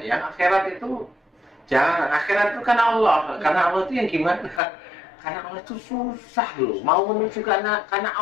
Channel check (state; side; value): drops out; right; at 4.6 s